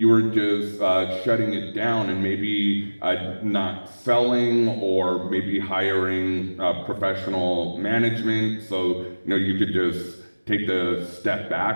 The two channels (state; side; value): inverted; both; correlation -1.00